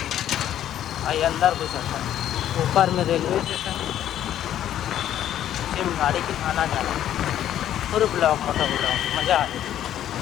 आई अंदर घुस जाता। ऊपर में रेलवे स्टेशन नीचे में गाड़ी के आना जाना पूरे ब्लॉक मोटा ब्लॉक मज़ा आ जाए।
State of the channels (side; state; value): right; quieter; 11.4 dB